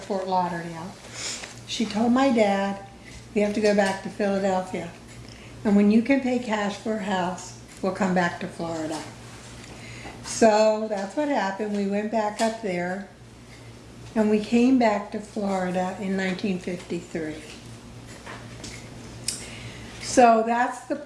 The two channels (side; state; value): both; identical; correlation 1.00